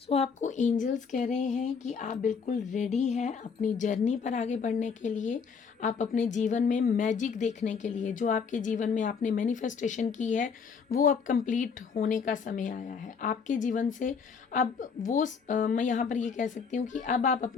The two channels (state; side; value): quieter; right; 5.9 dB